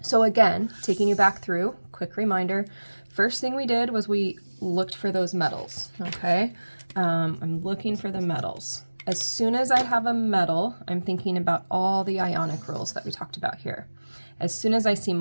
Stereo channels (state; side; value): inverted; both; correlation -1.00